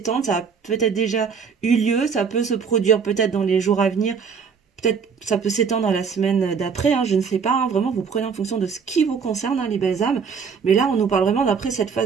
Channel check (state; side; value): quieter; left; 6.1 dB